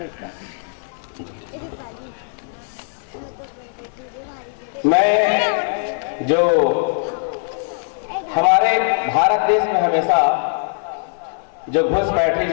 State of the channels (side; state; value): right; silent; 59 dB below the other